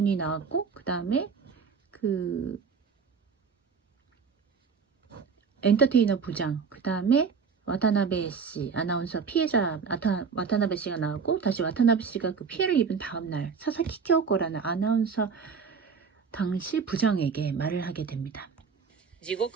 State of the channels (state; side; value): quieter; left; 5.8 dB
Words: 나왔고 그 다음에 그 엔터테이너 부장, 그 다음에 와타나베 씨, 아나운서 피해자 와타나베 씨가 나왔고 다시 와타나베 씨가 그 피해를 입은 다음 날 사사키 쿄코라는 아나운서 당시 부장에게 말을 하게 됩니다. 地